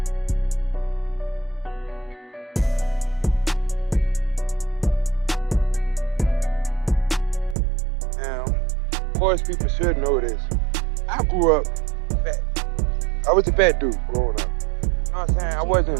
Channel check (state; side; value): drops out; left; at 7.6 s